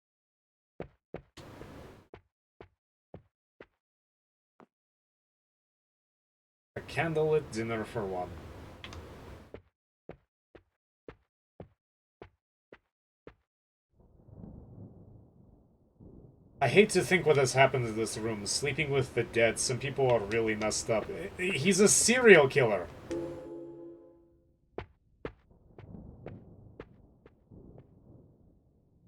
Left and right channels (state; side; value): identical; both; correlation 1.00